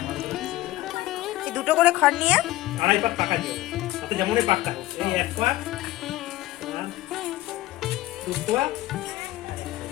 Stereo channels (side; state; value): right; quieter; 16.5 dB